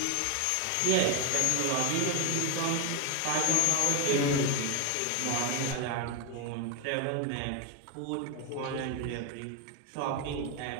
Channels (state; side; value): different; both; correlation 0.01